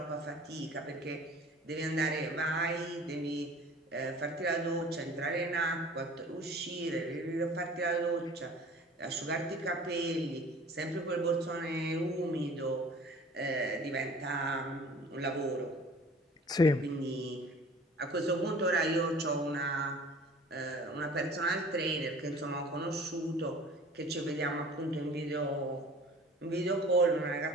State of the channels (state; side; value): normal; both; correlation 0.46